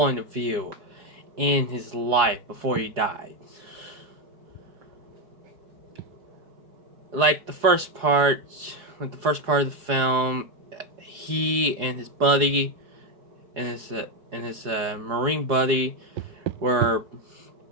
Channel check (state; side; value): late; left; 4.7 ms